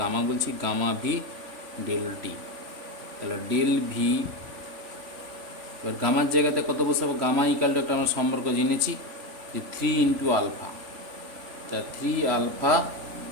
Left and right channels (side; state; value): left; late; 3.5 ms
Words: গামা বলছি, গামা ভি ডেল টি। তাহলে ডেল ভি, এবার গামার জায়গাতে কত বসাবো, গামা ইকাল টু একটা আমরা সম্পর্ক জেনেছি যে 3 ইন্টু আলফা, তাই 3 আলফা